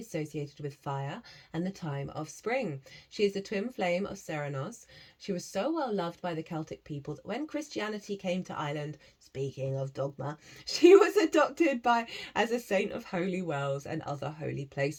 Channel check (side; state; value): both; identical; correlation 1.00